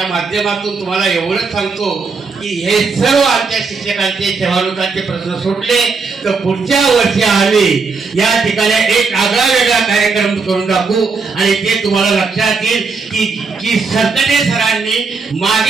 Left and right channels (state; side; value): quieter; left; 4.6 dB